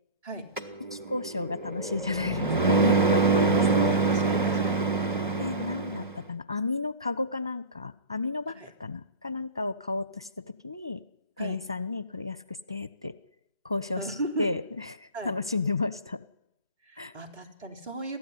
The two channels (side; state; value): both; inverted; correlation -0.31